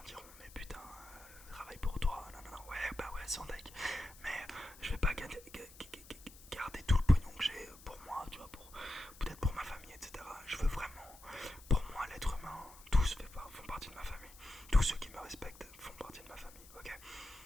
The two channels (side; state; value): left; noise; hiss, 20 dB below the sound